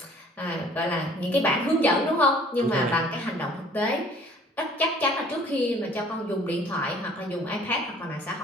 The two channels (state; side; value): normal; both; correlation 0.54